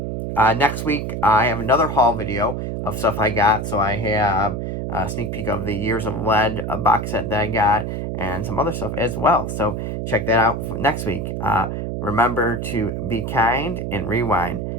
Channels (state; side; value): noise; right; hum, 3 dB below the sound